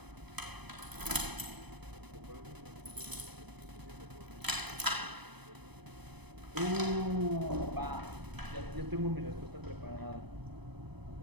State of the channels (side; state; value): left; late; 0.99 ms